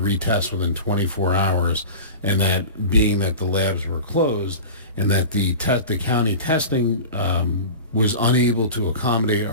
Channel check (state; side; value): inverted; both; correlation -0.33